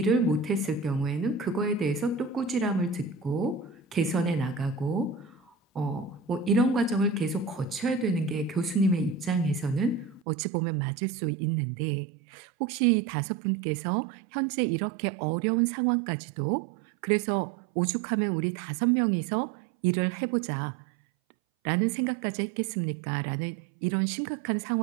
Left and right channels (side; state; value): left; drops out; at 10.2 s